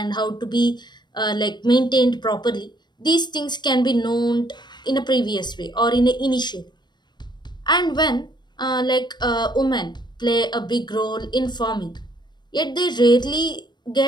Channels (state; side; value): late; right; 0.21 ms